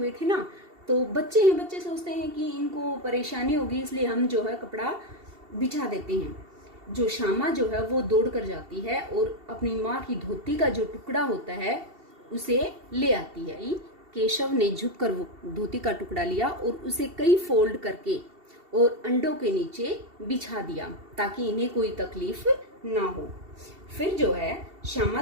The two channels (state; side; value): late; left; 2.7 ms